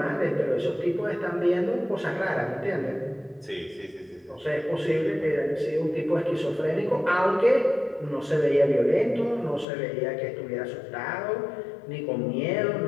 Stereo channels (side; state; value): right; drops out; at 9.7 s